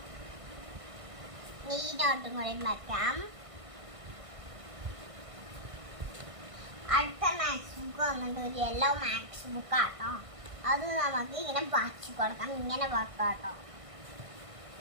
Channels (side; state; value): left; late; 1.6 ms